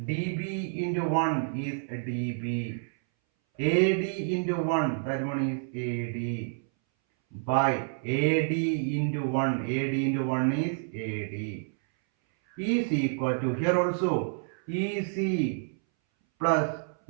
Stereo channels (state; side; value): silent; left; 59 dB below the other